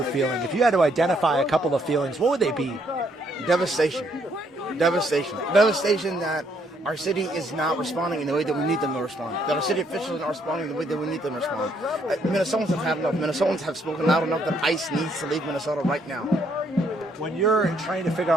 feeling? If you had to identify a couple of feelings, what would they be? Devastation. Devastation. Devastation that our city is not responding in the way that we need them to respond. That our city officials are not responding in the way that we need them to respond. Minnesotans have had enough. Minnesotans have spoken loud enough that ICE needs to leave Minnesota right now. When you're trying to figure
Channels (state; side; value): normal; both; correlation 0.70